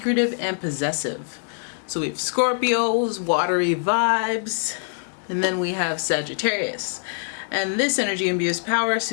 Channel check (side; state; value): right; silent; digital silence